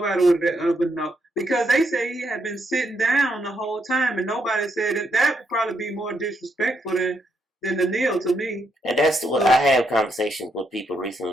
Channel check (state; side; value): normal; both; correlation 0.78